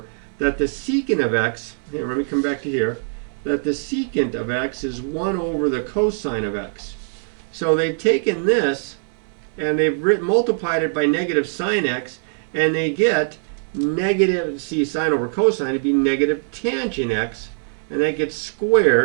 that the secant of x, here, let me come back to here, that the secant of x is 1 over the cosine of x. So they've taken this, and they've multiplied it by negative sine x, and they get negative, see, sine over cosine would be negative tangent x, and that gets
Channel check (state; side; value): silent; left; digital silence